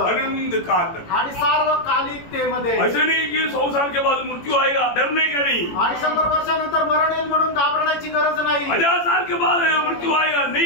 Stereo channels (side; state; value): right; late; 18 ms